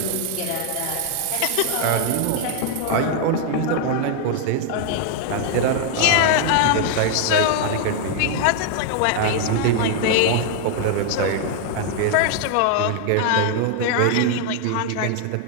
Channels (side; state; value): both; different; correlation 0.00